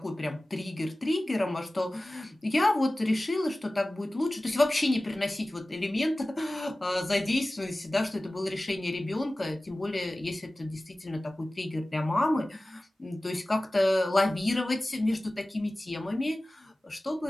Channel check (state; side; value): normal; both; correlation 0.97